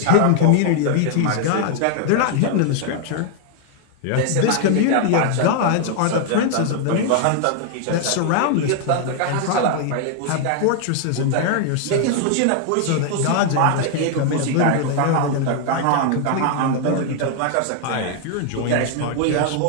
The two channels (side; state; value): both; different; correlation 0.00